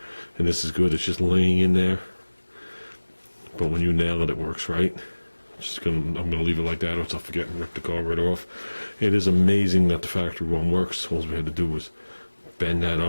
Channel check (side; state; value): both; inverted; correlation -1.00